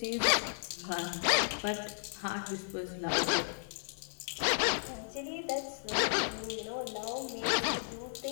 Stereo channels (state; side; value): silent; right; digital silence